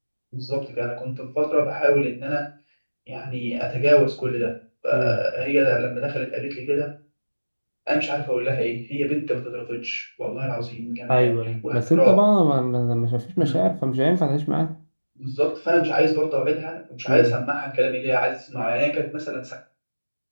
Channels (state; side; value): inverted; both; correlation -1.00